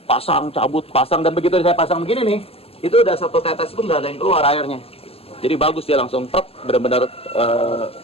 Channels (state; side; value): late; right; 0.29 ms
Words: pasang, dan begitu saya pasang begini nih, itu udah satu tetes pun nggak ada yang keluar airnya. Jadi bagus dia langsung truk, benar-benar